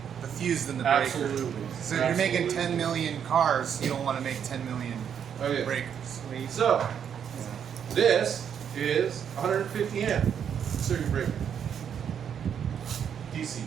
the fuse than the breaker. Absolutely. So if you're making Absolutely. 10 million cars, you don't want to make 10 million Okay. breakers. So this is 150 amp circuit breaker. DC,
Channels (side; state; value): left; quieter; 8.2 dB